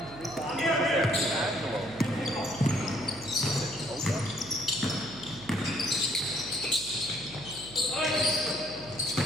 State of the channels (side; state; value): right; noise; hum, 18 dB below the sound